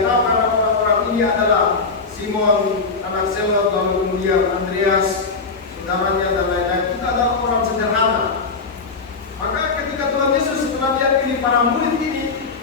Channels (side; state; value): right; quieter; 4.4 dB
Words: ini adalah Simon, anak Selot, lalu kemudian Andreas, saudaranya dan lain-lain. Kita adalah orang sederhana. Maka ketika Tuhan Yesus setelah dia pilih para murid ini,